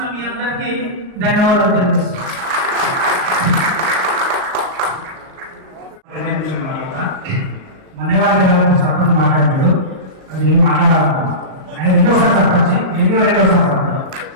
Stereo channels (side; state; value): left; late; 38 ms